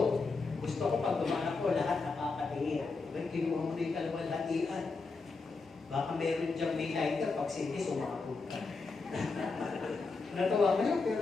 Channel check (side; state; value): right; quieter; 4.1 dB